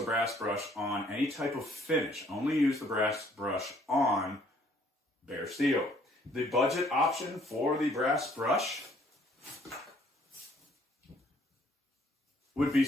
brass brush on any type of finish. Only use the brass brush on bare steel. The budget option for the brass brush would be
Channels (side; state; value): both; normal; correlation 0.62